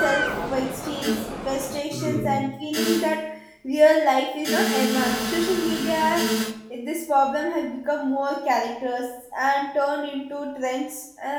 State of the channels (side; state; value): both; identical; correlation 1.00